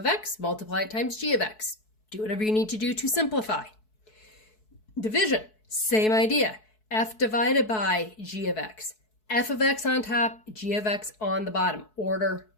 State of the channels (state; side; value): late; right; 4.6 ms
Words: x, multiply it times g of x. Do whatever you need to do to simplify. Division, same idea. F divided by g of x. F of x on top, g of x on the bottom. Order